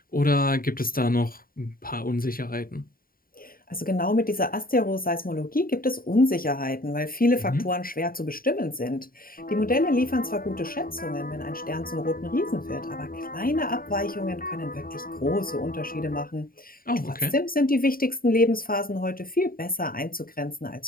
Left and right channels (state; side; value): late; right; 0.42 ms